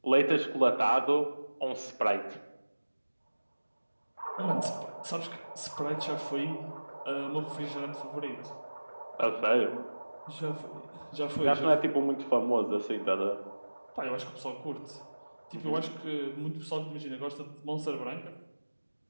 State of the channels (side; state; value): both; inverted; correlation -1.00